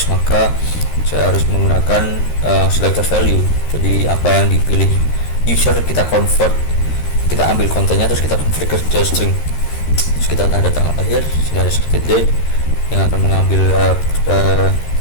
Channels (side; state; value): right; late; 13 ms